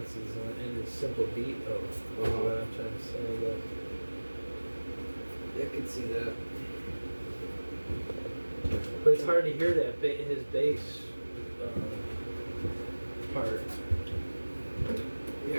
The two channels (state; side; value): inverted; both; correlation -1.00